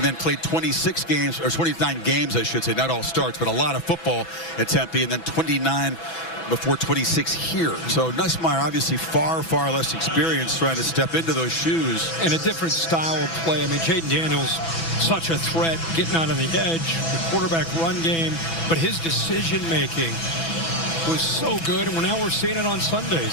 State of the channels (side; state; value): right; late; 6.0 ms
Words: then played 26 games, or 29 games, I should say, not all starts, but a lot of football at Tempe, and then 29 before 26 here. So Nussmeier obviously far less experienced trying to step into those shoes. And a different style of play. I mean, Jaden Daniels, such a threat, getting out on the edge, the quarterback run game, but his decision-making was so good, and now we're seeing it on